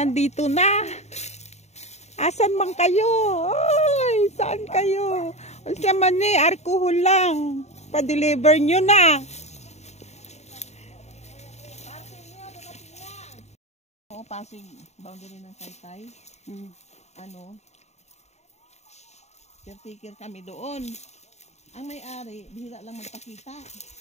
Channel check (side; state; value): right; late; 0.32 ms